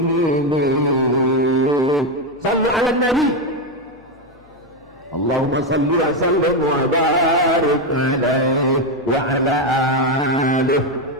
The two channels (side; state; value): left; noise; hum, 29 dB below the sound